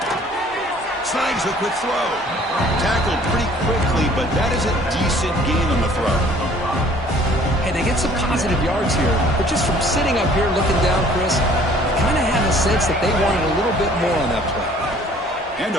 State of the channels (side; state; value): both; normal; correlation 0.55